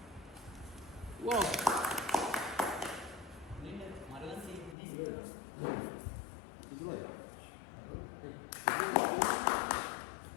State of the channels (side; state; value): right; drops out; at 4.8 s